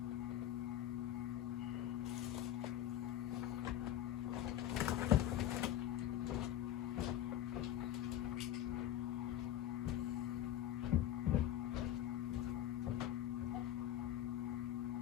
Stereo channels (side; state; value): right; quieter; 12.0 dB